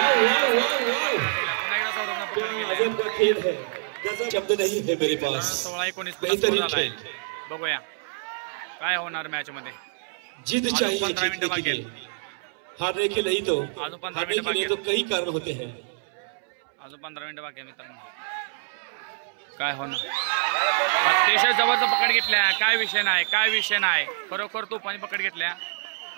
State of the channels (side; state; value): left; silent; 61 dB below the other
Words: पुन्हा एकदा सौरभनं पकड केले. शब्द नहीं है मेरे पास. 16-19 झालाय. बघूया काय होणार मॅच मध्ये. जिद चाहिए 15 मिनिटं बाकी आहेत. हारने के नहीं तो अजून 15 हारने मिनिटं के लिए बाकी तो कई कारण होते हैं. अजून 15 मिनिटं बाकी आहे मित्रांनो. काय होणार. अतिशय जबरदस्त पकड घेतल्या. काय विषय नाही खरोखर तोफानी पकड घेतल्या.